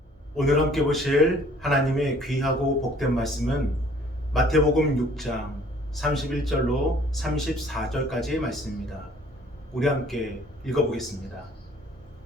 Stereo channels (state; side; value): normal; both; correlation 0.56